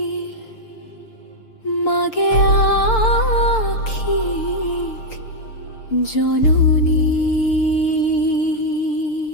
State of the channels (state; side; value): late; right; 6.7 ms